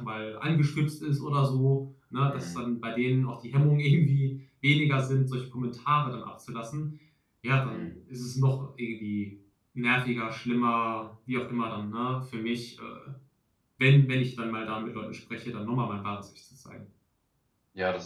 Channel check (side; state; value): both; identical; correlation 1.00